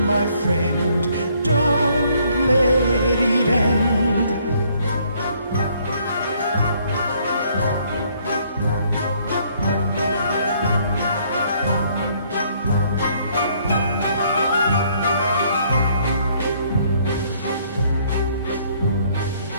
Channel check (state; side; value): inverted; both; correlation -0.65